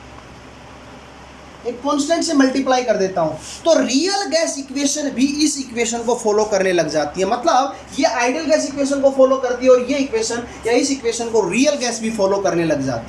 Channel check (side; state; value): both; identical; correlation 1.00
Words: एक कांस्टेंट से मल्टीप्लाई कर देता हूं, तो रियल गैस इक्वेशन भी इस इक्वेशन को फॉलो करने लग जाती है। मतलब ये आइडियल गैस इक्वेशन को फॉलो करती है और ये इक्वेशन या इस इक्वेशन को रियल गैस भी फॉलो करने लग